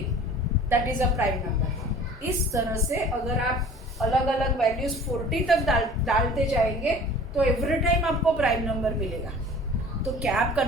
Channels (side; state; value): both; normal; correlation 0.45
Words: that is a prime number. इस तरह से अगर आप अलग अलग वैल्यूज 40 तक डालते जाएंगे तो एवरी टाइम आपको प्राइम नंबर मिलेगा। तो क्या आप